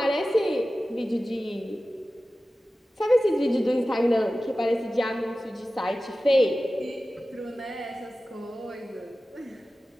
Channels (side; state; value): both; normal; correlation 0.95